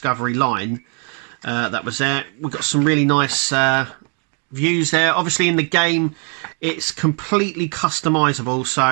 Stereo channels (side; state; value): left; quieter; 39.4 dB